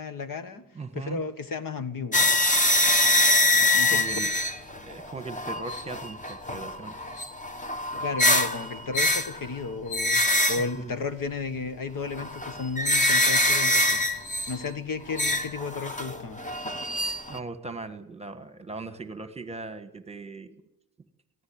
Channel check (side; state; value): both; normal; correlation 0.12